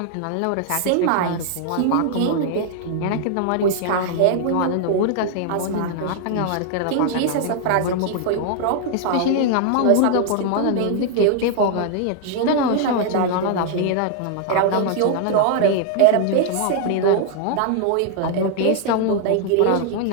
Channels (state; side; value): different; both; correlation 0.00